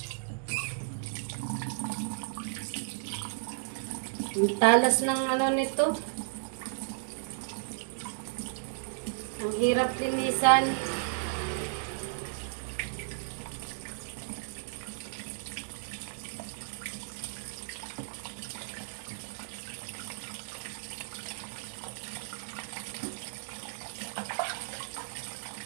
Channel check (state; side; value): silent; left; digital silence